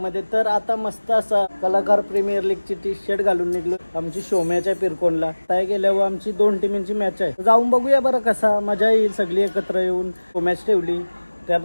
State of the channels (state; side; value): inverted; both; correlation -1.00